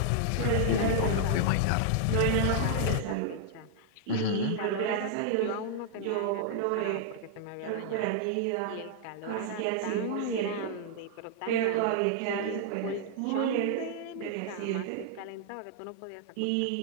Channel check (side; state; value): both; different; correlation -0.01